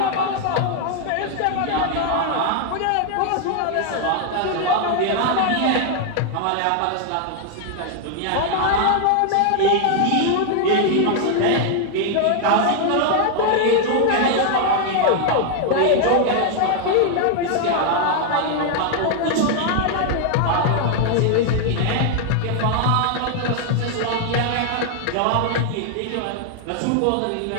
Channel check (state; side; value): different; both; correlation 0.00